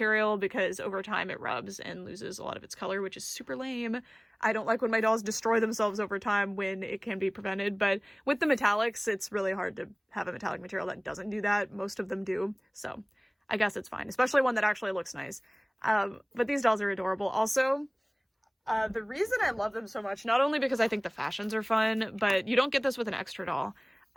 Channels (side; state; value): both; identical; correlation 1.00